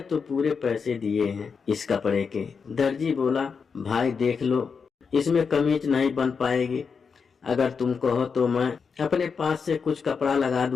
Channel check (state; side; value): quieter; right; 5.7 dB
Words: तो पूरे पैसे दिए हैं इस कपड़े के। दर्जी बोला, भाई देख लो, इसमें कमीज नहीं बन पाएगी। अगर तुम कहो तो मैं अपने पास से कुछ कपड़ा लगा